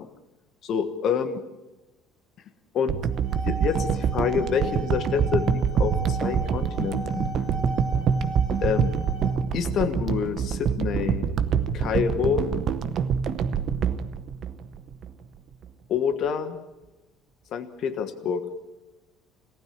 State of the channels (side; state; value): both; normal; correlation 0.56